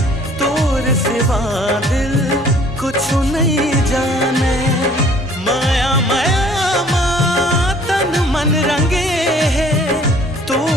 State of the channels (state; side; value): normal; both; correlation 0.56